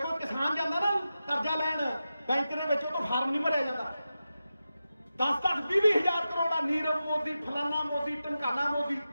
किसान जाता ना कर्जा लैन बैंक के विच, तो फार्म नहीं भरिया जाता। 10-10, 20 हज़ार करोड़ नीरव मोदी, फलाना मोदी, ढमकाना मोदी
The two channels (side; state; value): both; inverted; correlation -0.92